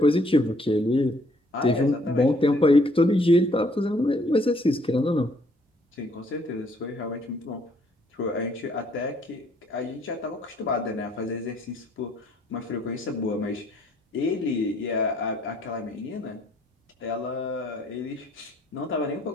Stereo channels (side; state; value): both; normal; correlation 0.65